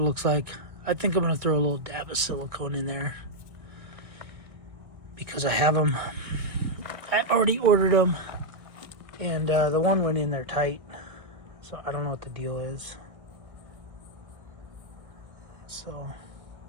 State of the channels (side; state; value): left; late; 1.6 ms